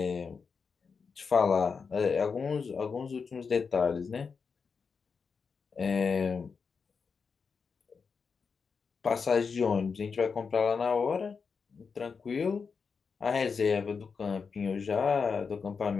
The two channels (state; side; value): quieter; right; 5.5 dB